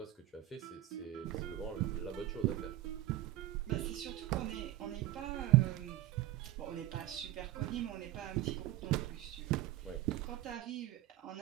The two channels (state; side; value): quieter; left; 14.7 dB